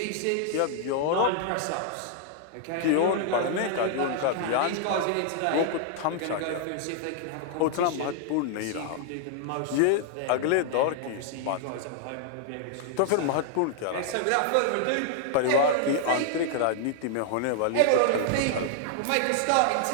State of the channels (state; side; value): different; both; correlation -0.01